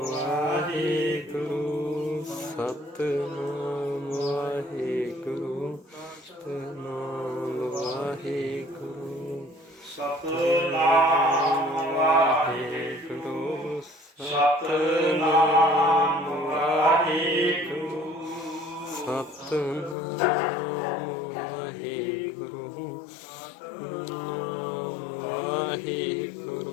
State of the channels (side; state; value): right; drops out; at 20.0 s